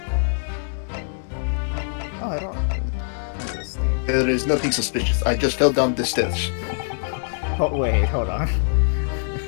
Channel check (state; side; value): silent; right; digital silence